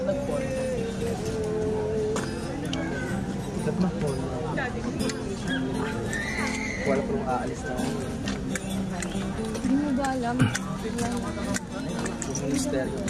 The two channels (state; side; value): identical; both; correlation 1.00